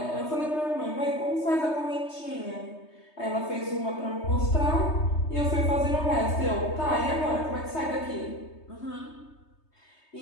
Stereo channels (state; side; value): late; right; 3.2 ms